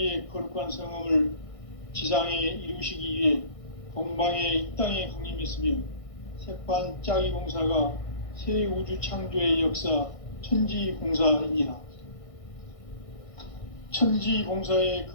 거룩한 성험을 지상에 이루시기 위해 동방의 이 땅에 강림했으며 새판짜기 공사가 새 우주 창조의 역사 천지공사이니라. 천지공사의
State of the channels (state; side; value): late; right; 1.6 ms